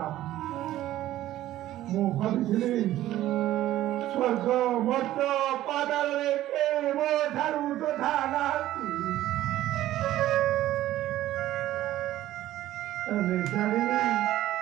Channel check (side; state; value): left; quieter; 14.1 dB